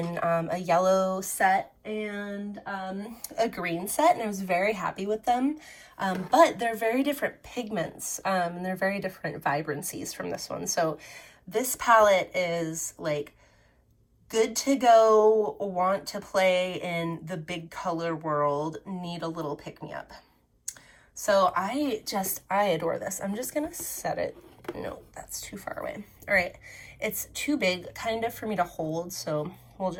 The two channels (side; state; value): both; identical; correlation 1.00